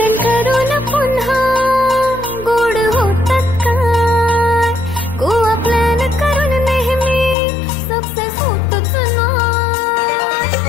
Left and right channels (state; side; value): drops out; right; at 7.4 s